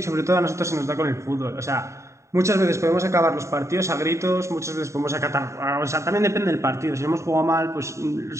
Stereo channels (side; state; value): left; late; 0.14 ms